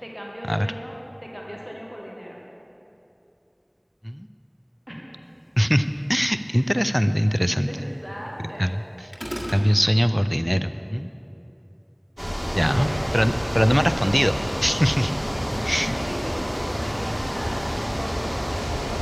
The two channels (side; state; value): both; identical; correlation 1.00